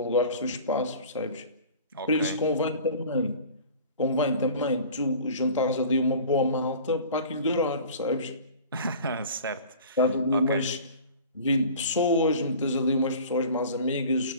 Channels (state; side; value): inverted; both; correlation -0.43